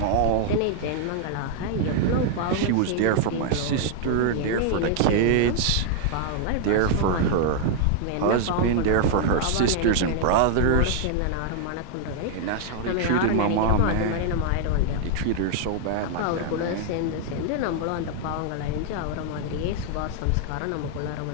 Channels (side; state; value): both; different; correlation 0.00